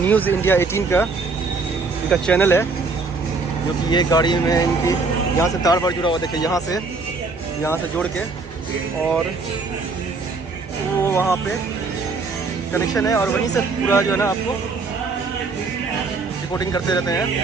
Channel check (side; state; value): left; quieter; 4.1 dB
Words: इंडिया 18 का इनका चैनल है, जो कि ये गाड़ी में इनकी यहाँ से तार बार जुड़ा हुआ। देखिए यहाँ से जोड़ के, और वो वहाँ पे कनेक्शन है, और वहीं से पूरा जो है ना आपको रिपोर्टिंग करते रहते हैं।